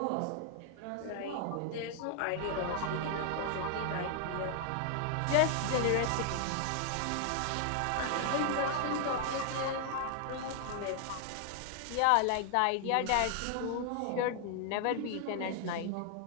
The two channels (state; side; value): different; both; correlation 0.00